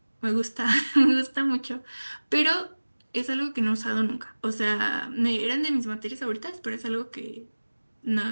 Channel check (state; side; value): inverted; both; correlation -1.00